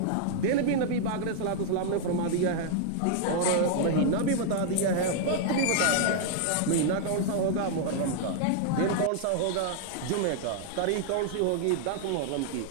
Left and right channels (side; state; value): both; different; correlation -0.01